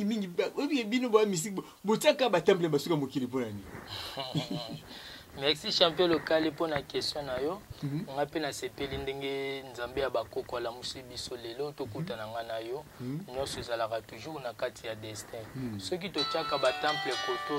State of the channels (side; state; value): both; identical; correlation 1.00